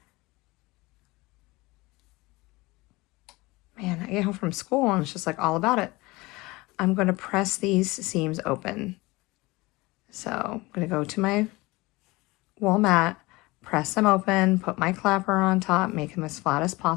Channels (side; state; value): right; quieter; 22.1 dB